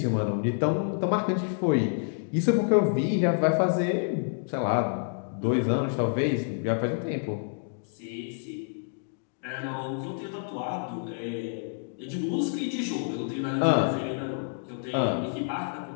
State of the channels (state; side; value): silent; right; digital silence